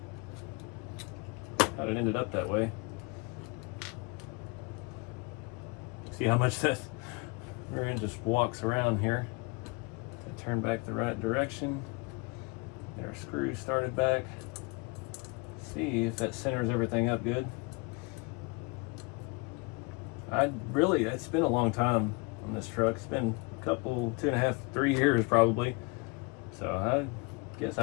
that way. See how much that rear end just walks around here. I turn back the right direction. Get our screws started back. See if that centers everything up good. It's been a long time on this truck. It's been a couple, 2.5, 3 years probably. So I guess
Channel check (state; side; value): quieter; right; 28.8 dB